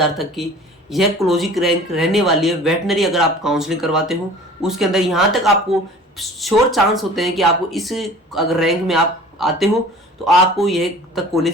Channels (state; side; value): normal; both; correlation 0.45